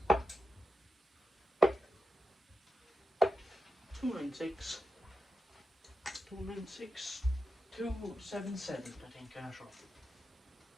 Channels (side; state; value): both; normal; correlation 0.90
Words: 296, 296, 277, I think, I'm not sure.